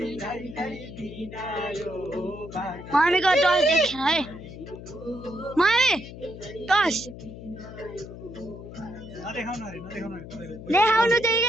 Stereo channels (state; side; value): noise; left; hum, 13 dB below the sound